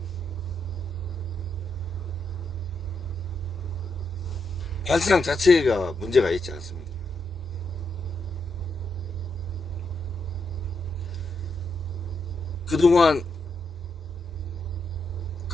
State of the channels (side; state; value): both; normal; correlation 0.81